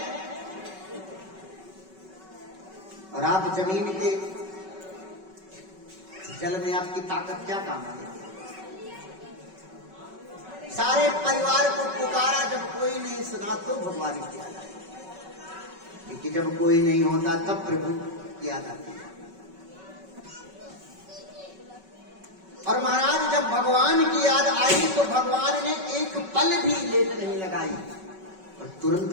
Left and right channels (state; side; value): late; left; 5.3 ms